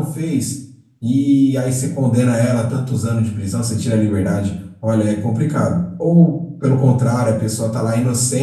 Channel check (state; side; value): identical; both; correlation 1.00